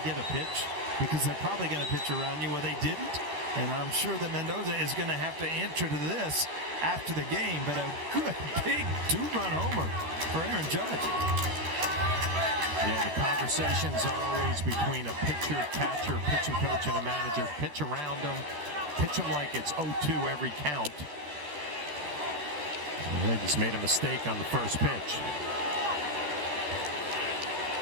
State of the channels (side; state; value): left; late; 14 ms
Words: get a pitch because they're probably going to pitch around you where they didn't. And I'm sure that Mendoza is going to have to answer to this after the game. But a good, big 2-run homer for Aaron Judge. Yeah, the conversations are always between a pitcher, catcher, pitching coach, and a manager. Pitch around them. Pitch them like it's 0-2 every count. And they just made a mistake on the first pitch.